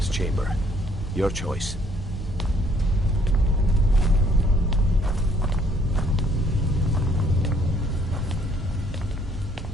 chamber. Your choice.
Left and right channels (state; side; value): normal; both; correlation 0.64